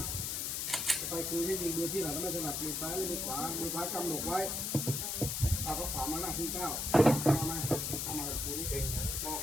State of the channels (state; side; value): noise; left; hiss, 1 dB below the sound